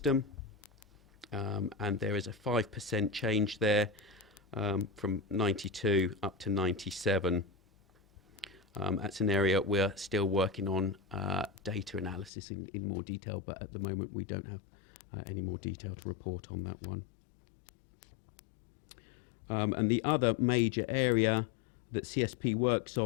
and there is a 5% change there, from 92 up to 97. That's an area we're still working on data analysis in more detail, but at the moment we don't have any more detail to report on that one. And the other major area that CSP works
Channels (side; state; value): right; drops out; at 12.3 s